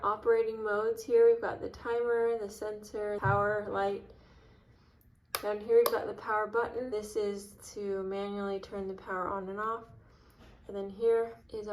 operating modes here. We've got the timer, the sensor, power, light. Down here we've got the power button. This is to manually turn the power on and off. And then here is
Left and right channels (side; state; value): both; identical; correlation 1.00